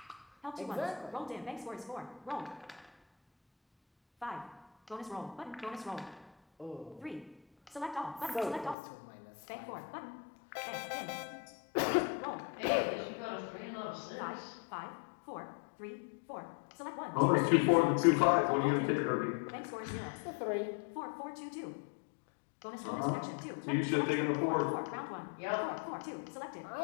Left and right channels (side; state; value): right; drops out; at 8.8 s